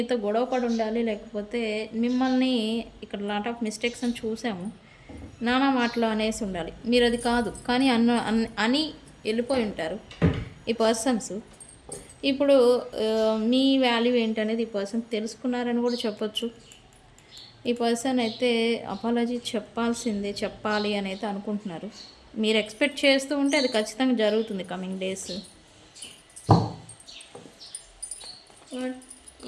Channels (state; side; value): identical; both; correlation 1.00